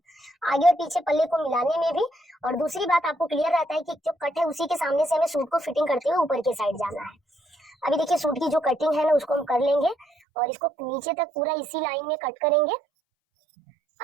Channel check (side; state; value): left; drops out; at 10.1 s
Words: आगे और पीछे पल्ले को मिलाने में भी। और दूसरी बात, आपको क्लियर रहता है कि जो कट है उसी के सामने से हमें सूट को फिटिंग करते हुए ऊपर के साइड जाना है। अभी देखिए सूट की जो कटिंग है ना, उसको हम कर लेंगे, और इसको नीचे तक पूरा इसी लाइन में कट करेंगे।